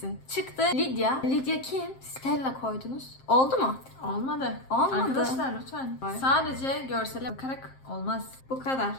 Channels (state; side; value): late; right; 7.6 ms